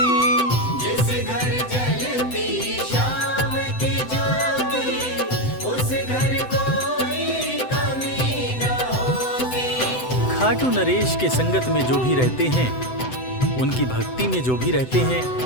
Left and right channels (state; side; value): late; right; 7.9 ms